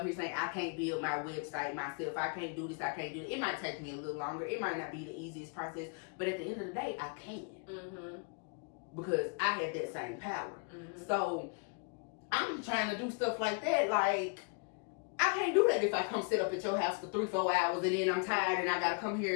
here saying I can't build my website myself. I can't do this. I can't do it. It might take me a little longer. It might not be the easiest process. But at the end of the day, I can. Mm-hmm. Because I have that same power. Mm-hmm. So I'm trying to do stuff like that. Like, I can't do that if I come sit up at your house for 3-4 hours and then I'm tired and I gotta come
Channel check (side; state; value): right; quieter; 34.7 dB